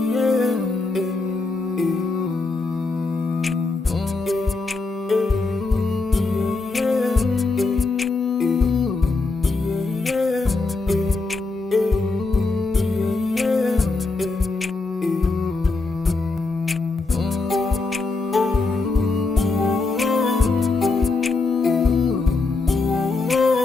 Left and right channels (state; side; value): quieter; right; 3.6 dB